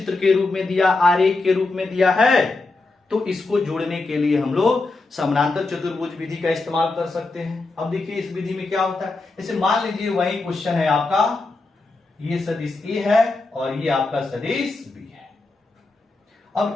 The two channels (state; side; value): quieter; right; 3.4 dB